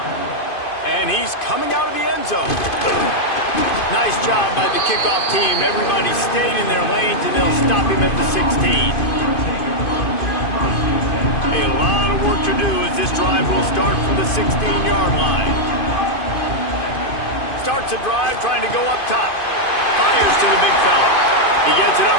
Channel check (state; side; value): late; right; 2.5 ms